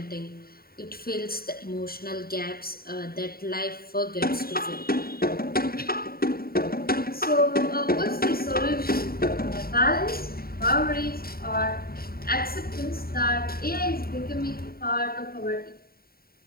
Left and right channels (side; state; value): right; late; 0.43 ms